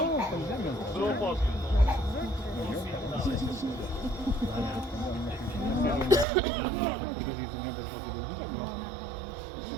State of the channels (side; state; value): left; drops out; at 6.2 s